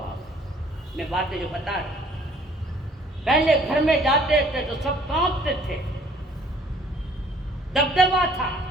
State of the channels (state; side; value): normal; both; correlation 0.58